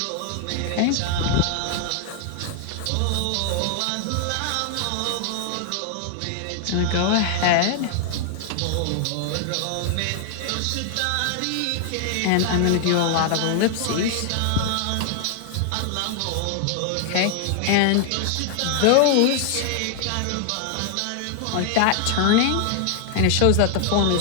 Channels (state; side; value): different; both; correlation 0.00